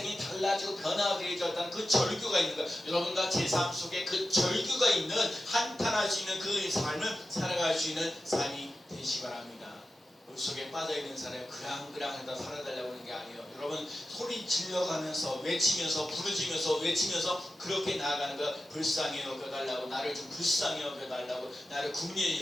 달라지고 변화되어졌다는 그 절규가 있는 거야. 여러분과 제 삶 속에 그 절규가 있는 한탄할 수 있는 그 삶을 살아갈 수 있는 삶이 되시 바랍니다. 물 속에 빠져있는 사람이 그랑그랑하다 살아달라고 하는 게 아니에요. 여러분 소리 질러가면서 외치면서 부르짖으면서 외치면서 그렇게 나아가는 거. 불쌍히 여겨달라고 나를 좀 불쌍히 여겨달라고 나를 국리히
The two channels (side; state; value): both; normal; correlation 0.92